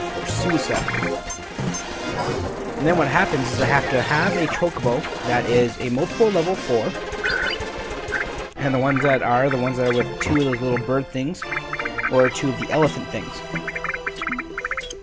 Suicide. And then what happens is I have to have a Chocobo that is a multiple level 4, and the ones that are with two of those little bird things, or two of the elephant things.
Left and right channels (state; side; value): identical; both; correlation 1.00